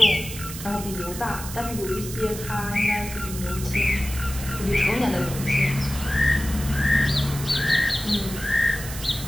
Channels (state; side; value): noise; right; hiss, 10 dB below the sound